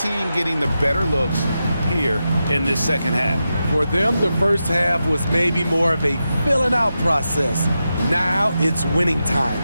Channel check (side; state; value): both; inverted; correlation -0.89